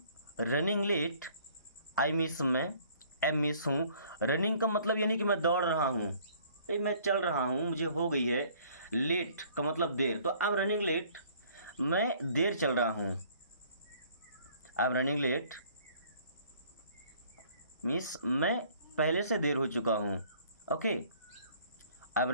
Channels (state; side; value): inverted; both; correlation -0.57